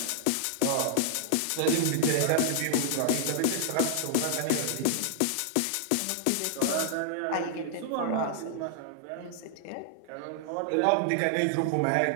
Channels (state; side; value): different; both; correlation -0.01